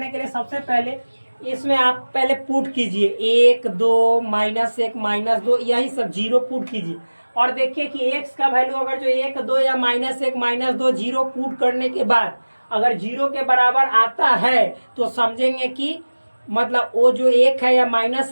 के लिए सबसे पहले इसमें आप पहले पुट कीजिए 1 2 -1 -2 यही सब 0 पुट कीजिए, और देखिए कि x का वैल्यू अगर जो 1 2 या -1 -2 0 पुट करने के बाद अगर 0 के बराबर आता है तो समझेंगे कि मतलब वो जो 1 है या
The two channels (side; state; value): both; inverted; correlation -1.00